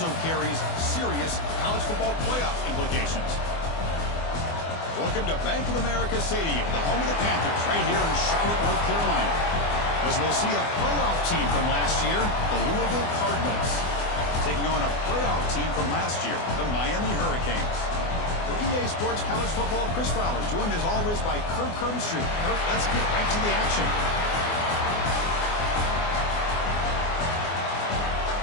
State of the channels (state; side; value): late; right; 24 ms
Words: carries serious college football playoff implications. Welcome to Bank of America Stadium, the home of the Panthers, right here in Charlotte, North Carolina. As we'll see a playoff team from last year, the Louisville Cardinals, taking on a playoff team from last year, the Miami Hurricanes. For EA Sports College Football, Chris Fowler, joined as always by Kirk Herbstreit. Kirk, let's get right to the action.